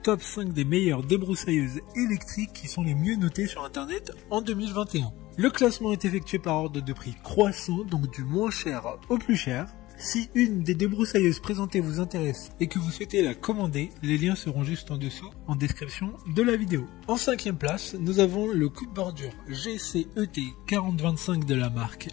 5 des meilleures débroussailleuses électriques qui sont les mieux notées sur internet en 2021. Le classement est effectué par ordre de prix croissant, donc du moins cher au plus cher. Si une des débroussailleuses présentées vous intéresse et que vous souhaitez la commander, les liens seront juste en dessous en description de la vidéo. En 5e place, nous avons le coupe-bordure GCET 4025 de la marque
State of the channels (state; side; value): quieter; right; 18.0 dB